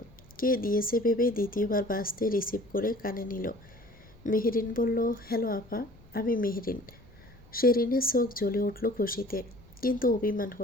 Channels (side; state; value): left; noise; rumble, 25 dB below the sound